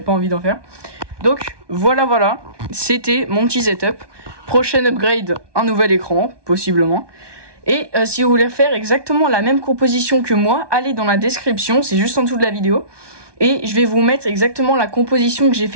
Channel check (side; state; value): left; late; 1.2 ms